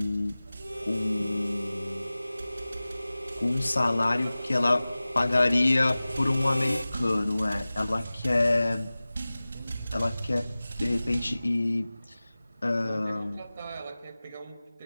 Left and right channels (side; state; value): both; inverted; correlation -0.98